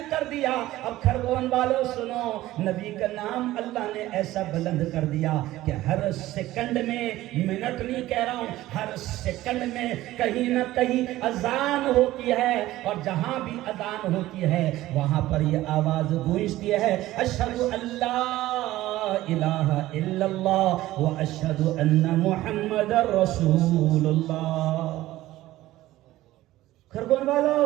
کر دیا. اب خرگون والوں سنو, نبی کا نام اللہ نے ایسا بلند کر دیا کہ ہر سیکنڈ میں, منٹ نہیں کہہ رہا ہوں, ہر سیکنڈ میں کہیں نہ کہیں اذان ہوتی ہے, اور جہاں بھی اذان ہوتی ہے وہاں پر یہ آواز گونجتی ہے, اشہدو اللہ الہ الا اللہ و اشہدو ان محمد رسول اللہ. خرگون والو,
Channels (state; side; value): quieter; left; 16.0 dB